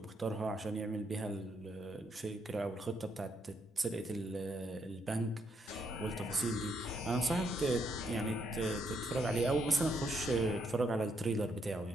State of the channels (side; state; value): both; normal; correlation 0.75